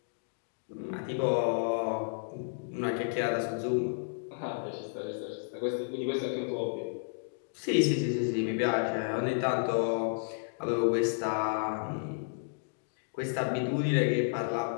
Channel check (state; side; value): silent; right; digital silence